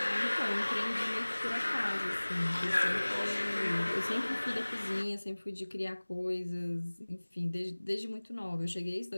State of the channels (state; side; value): inverted; both; correlation -1.00